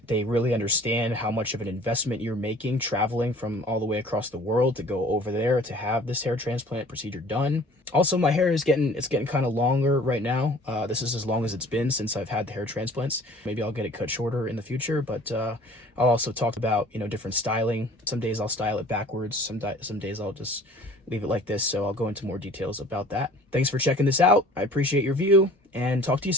They really understand how much of an investment you're making traveling from all the way across the world to go over there to have this hair transplant procedure done. Also, my hair is getting kind of longer right now. This is as long as it's been since I've had the hair transplants. Maybe I'll get it cut shorter in the future, but I'll also talk about, different styling. Some days I'll style it backwards. Some days I'll just leave it like this. So I'll go into more details about that. Thanks for checking this out. I appreciate your view and talk to you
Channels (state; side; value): normal; both; correlation 0.50